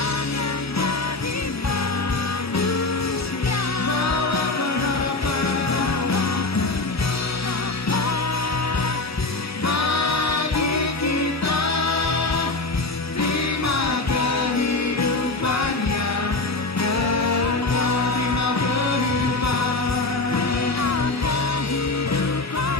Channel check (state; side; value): quieter; right; 3.2 dB